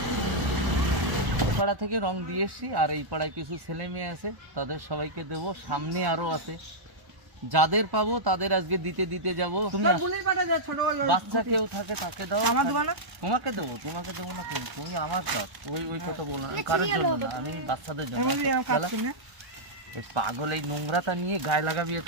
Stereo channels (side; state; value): left; late; 1.0 ms